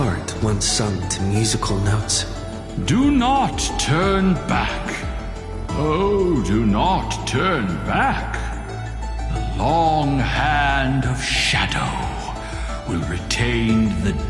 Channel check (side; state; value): both; identical; correlation 1.00